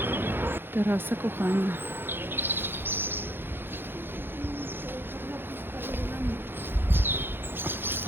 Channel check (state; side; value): late; left; 0.10 ms